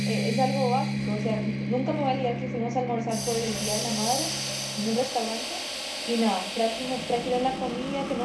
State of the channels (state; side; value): identical; both; correlation 1.00